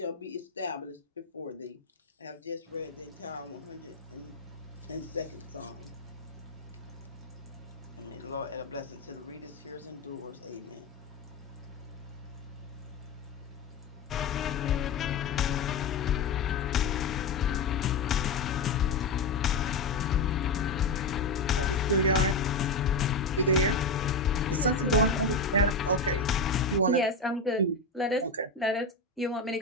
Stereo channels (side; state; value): right; quieter; 3.4 dB